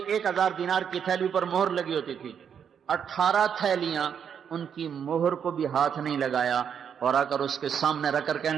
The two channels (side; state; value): left; quieter; 7.8 dB